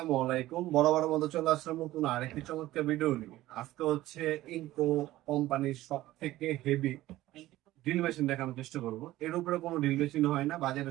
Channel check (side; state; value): left; quieter; 16.0 dB